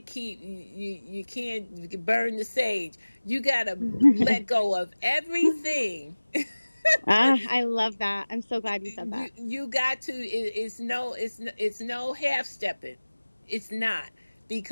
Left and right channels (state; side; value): inverted; both; correlation -1.00